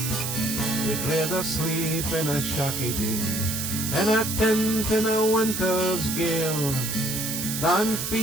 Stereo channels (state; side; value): noise; right; hiss, 3 dB below the sound